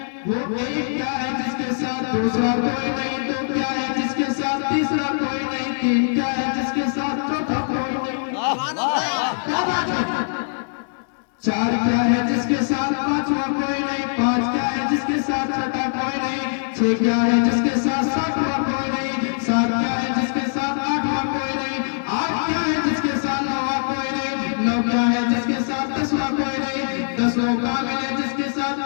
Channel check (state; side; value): silent; right; 64 dB below the other